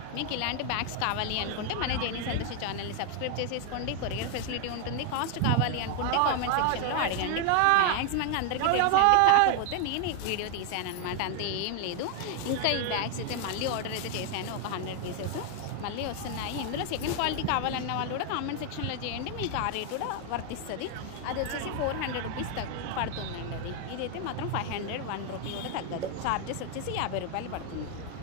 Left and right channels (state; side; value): different; both; correlation 0.00